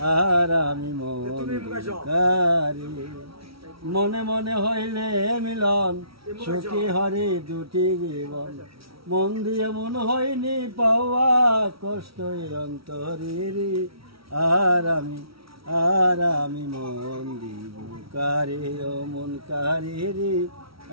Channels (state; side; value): late; left; 0.75 ms